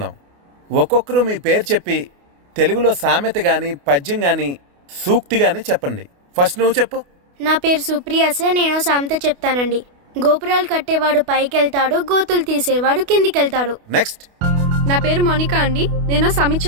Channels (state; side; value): late; left; 28 ms